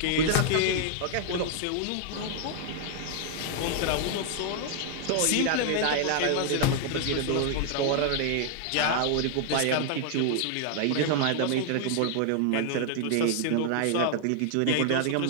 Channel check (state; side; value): different; both; correlation 0.00